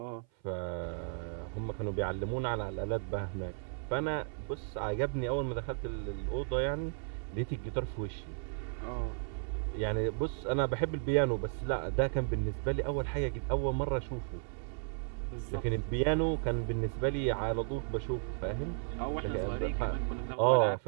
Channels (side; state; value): left; silent; 55 dB below the other